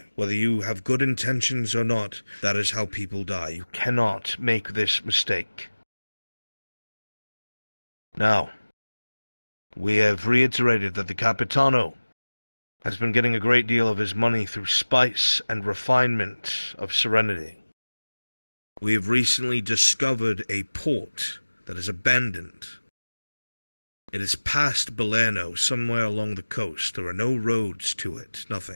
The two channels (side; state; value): both; inverted; correlation -1.00